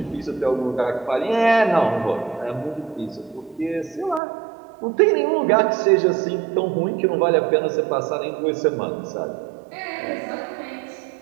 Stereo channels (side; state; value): left; drops out; at 4.2 s